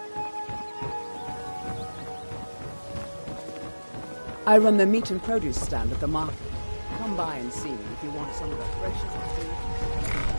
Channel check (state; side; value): inverted; both; correlation -1.00